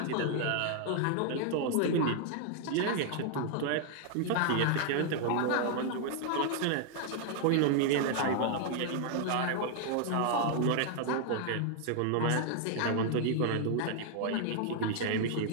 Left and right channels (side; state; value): both; different; correlation 0.00